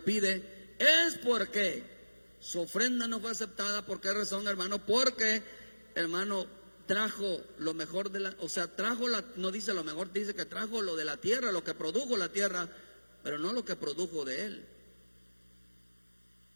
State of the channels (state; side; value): inverted; both; correlation -1.00